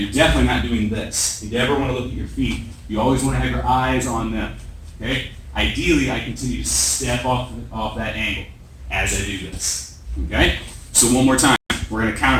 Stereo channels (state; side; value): identical; both; correlation 1.00